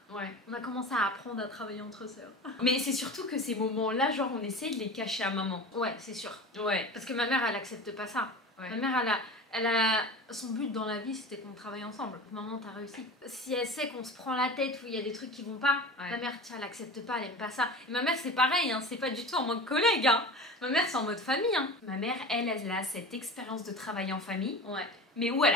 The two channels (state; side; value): normal; both; correlation 0.33